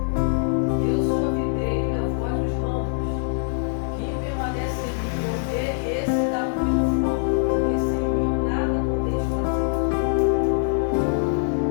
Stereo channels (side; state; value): right; silent; digital silence